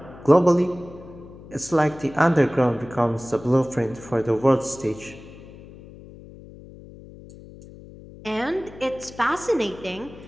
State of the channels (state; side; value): noise; left; hum, 18 dB below the sound